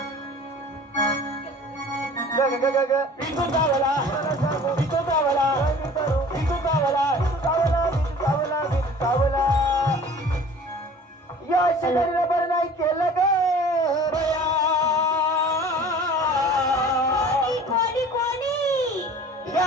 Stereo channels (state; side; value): normal; both; correlation 0.45